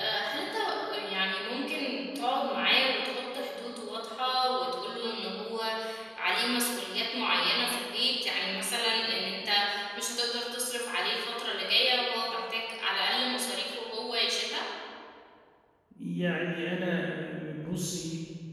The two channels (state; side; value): identical; both; correlation 1.00